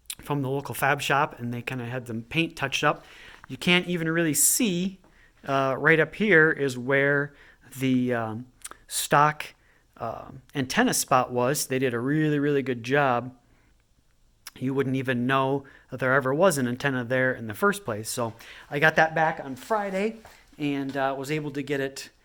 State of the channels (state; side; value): identical; both; correlation 1.00